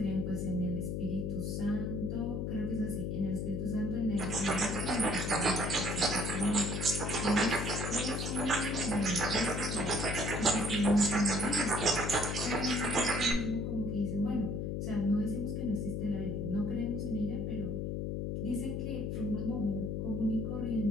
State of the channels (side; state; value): left; noise; hum, 1 dB below the sound